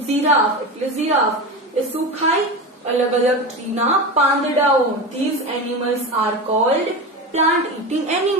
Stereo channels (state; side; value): normal; both; correlation 0.24